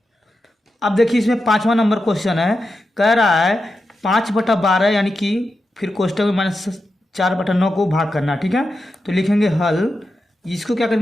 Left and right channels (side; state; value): both; normal; correlation 0.89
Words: अब देखिए इसमें 5वां नंबर क्वेश्चन है, कह रहा है 5/12, यानी कि फिर कोष्टक में -4/9 को भाग करना। ठीक है, तो लिखेंगे हल। इसको क्या